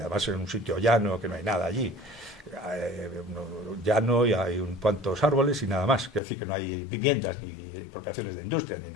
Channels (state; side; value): drops out; right; at 6.2 s